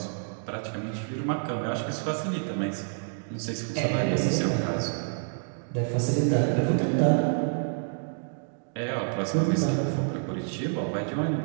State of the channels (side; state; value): left; silent; digital silence